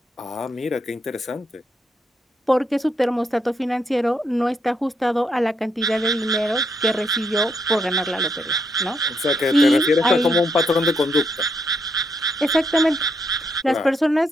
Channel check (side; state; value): both; normal; correlation 0.77